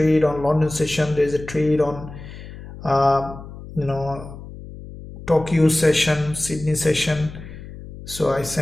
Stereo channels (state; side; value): noise; left; hum, 14 dB below the sound